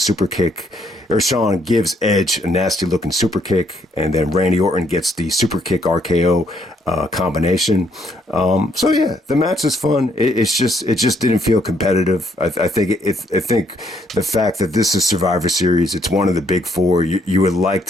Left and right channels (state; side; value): normal; both; correlation 0.70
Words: kick, or Shawn gives Edge a nasty looking super kick, and then Randy Orton gets the super kick RKO combination. So yeah, the match is fun. It just didn't feel competitive. I think the fact that this is Survivor Series, it's one of the big four. You would like